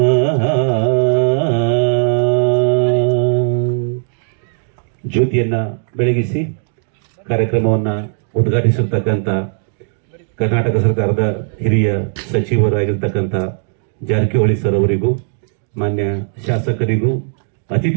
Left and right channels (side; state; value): left; silent; digital silence